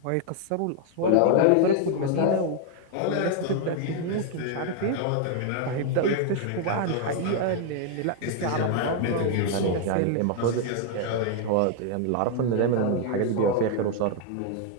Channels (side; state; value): both; different; correlation 0.00